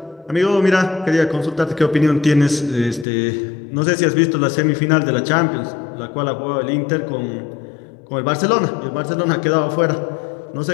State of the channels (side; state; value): right; drops out; at 3.1 s